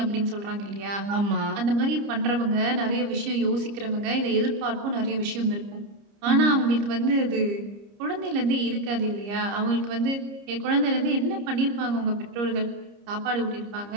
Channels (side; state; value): left; late; 30 ms